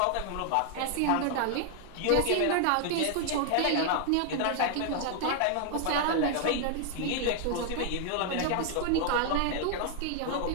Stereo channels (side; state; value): both; different; correlation 0.00